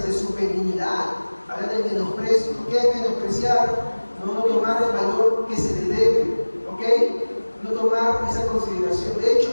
de su benignidad. Habla del menosprecio. ¿Qué es menospreciar? No tomar el valor que se le debe, ¿ok? No tomar esa consideración. De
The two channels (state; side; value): inverted; both; correlation -1.00